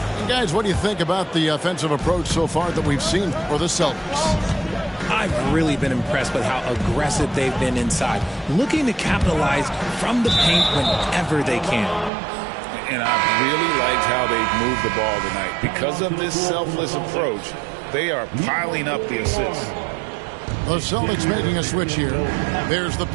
And guys, what do you think about the offensive approach so far that we've seen for the Celtics? I've really been impressed with how aggressive they've been inside, looking to capitalize from the paint whenever they can. And I really liked how they've moved the ball tonight. Because of this selfless approach, they are piling up the assists. The Celtics making a switch here. There's the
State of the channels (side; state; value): left; drops out; at 12.1 s